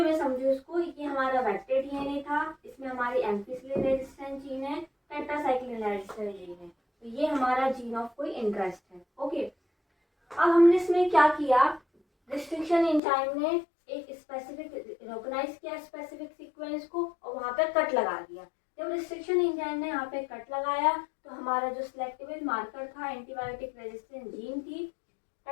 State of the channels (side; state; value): right; drops out; at 13.0 s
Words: में समझो इसको, ये हमारा वेक्टर डीएनए था, इसमें हमारी एम्फिसिलिन रेजिस्टेंस जीन है, टेट्रासाइक्लिन रेजिस्टेंस जीन है, तो ये हमारा जीन ऑफ कोई इंटरेस्ट है। ओके, अब हमने इसमें क्या किया, रिस्ट्रिक्शन एंजाइम ने एक स्पेसिफिक रिकॉग्नाइज किया स्पेसिफिक सीक्वेंस को और वहां पे कट लगा दिया। जब रिस्ट्रिक्शन एंजाइम ने यहाँ पे कट लगाया तो हमारा जो सिलेक्टिव मार्कर था एंटीबायोटिक रेजिस्टेंस जीन थी,